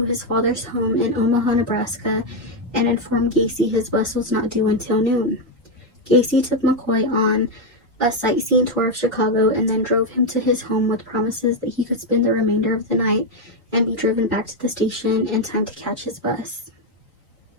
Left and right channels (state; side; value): normal; both; correlation 0.04